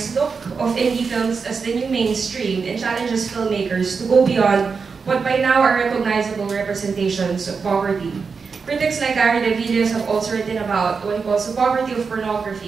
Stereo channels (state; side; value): quieter; left; 5.2 dB